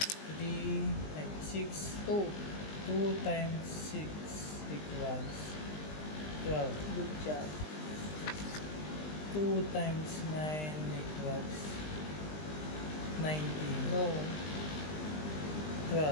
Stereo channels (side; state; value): right; late; 20 ms